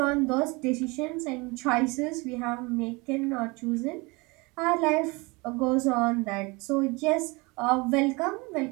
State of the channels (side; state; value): left; quieter; 26.1 dB